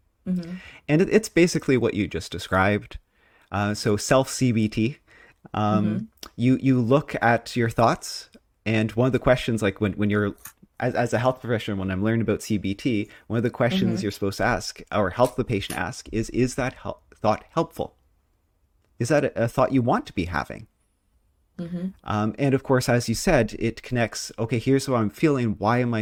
Mm-hmm. And it's basically what you just described. So self CBT. Mm-hmm. You look at your thoughts, and one of the questions, like when you're as a health professional, when I'm learning about CBT, one of the questions Mm-hmm. you're supposed to ask or help the patient ask is that thought helpful? Is that a thought you want to be having? Mm-hmm. And of course, as you said, it connects. Okay, here's what I'm feeling. Why am I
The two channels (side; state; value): both; identical; correlation 1.00